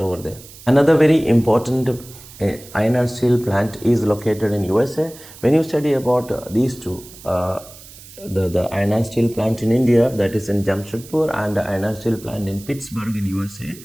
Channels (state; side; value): noise; right; hiss, 19 dB below the sound